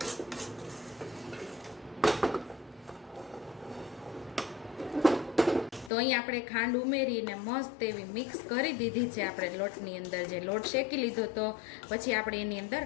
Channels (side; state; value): right; drops out; at 5.9 s